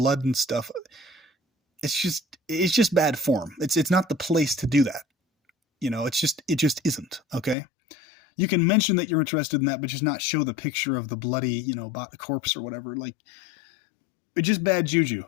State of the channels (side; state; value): right; drops out; at 7.6 s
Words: and stuff, it's just bad form. It's not the place to do that. You know, it just isn't. Okay. You can mention that you're interested in that, but just not show the picture of the bloody, you know, corpse or whatever. Like, it's just bad juju,